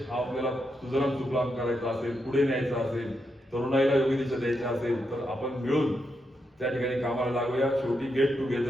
हा आपल्याला सुजलाम सुफलाम करायचा असेल, पुढे न्यायचा असेल, तरुणाईला योग्य दिशा द्यायची असेल तर आपण मिळून त्या ठिकाणी कामाला लागूया. शेवटी गेट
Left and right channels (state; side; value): normal; both; correlation 0.83